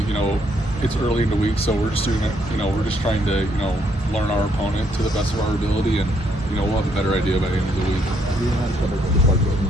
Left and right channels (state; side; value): normal; both; correlation 0.71